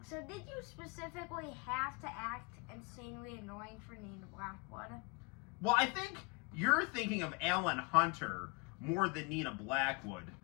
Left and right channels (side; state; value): right; quieter; 29.2 dB